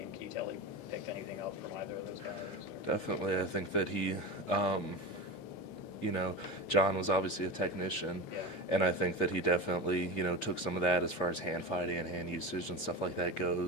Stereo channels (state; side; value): late; right; 8.5 ms